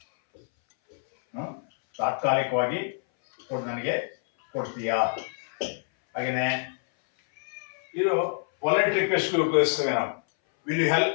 ತಾತ್ಕಾಲಿಕವಾಗಿ ನನಗೆ ಕೊಡ್ತೀಯಾ? ಹಾಗೇನೆ ಇದು ಪೊಲೈಟ್ ರಿಕ್ವೆಸ್ಟ್ ಉಪಯೋಗಿಸ್ತೇವೆ ನಾವು. Will you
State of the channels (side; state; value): right; silent; 59 dB below the other